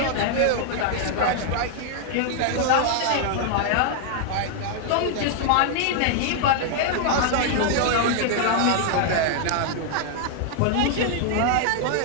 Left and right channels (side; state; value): both; different; correlation -0.01